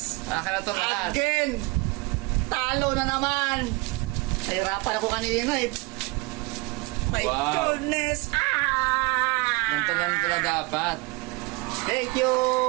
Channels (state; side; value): quieter; left; 25.9 dB